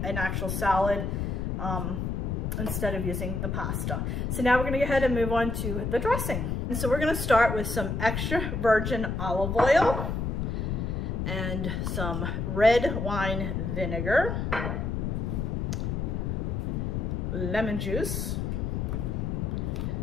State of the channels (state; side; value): noise; left; rumble, 1 dB below the sound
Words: an actual salad instead of using the pasta. So now we're going to go ahead and move on to the dressing. And so we're going to start with some extra virgin olive oil and some red wine vinegar, lemon juice.